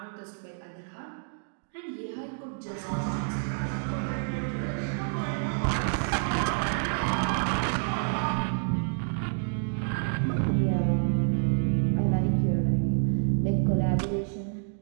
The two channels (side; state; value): left; silent; 56 dB below the other